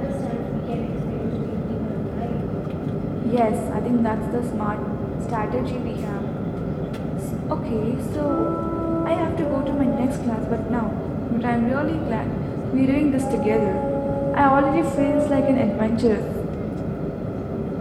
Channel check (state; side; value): identical; both; correlation 1.00